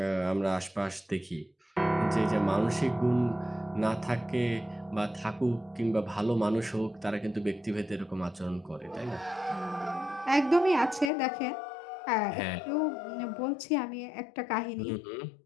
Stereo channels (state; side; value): drops out; right; at 11.1 s